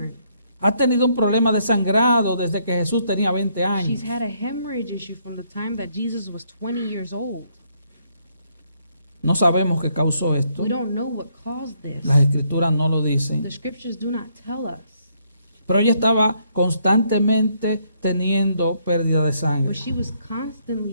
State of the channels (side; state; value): both; inverted; correlation -0.72